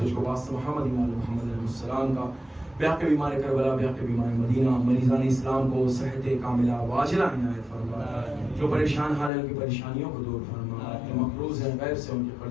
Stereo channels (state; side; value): drops out; right; at 9.3 s